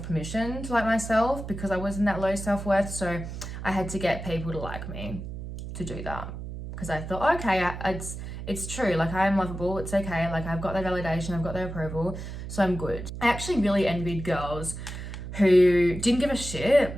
permission to like myself because I was in that low self-worth, so I had to get people to like me to do that. Because I thought, okay, it's true, like I am lovable, it's okay, like I've got their validation, I've got their approval, so I'm good. I actually really envied girls who didn't give a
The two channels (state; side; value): noise; right; hum, 8 dB below the sound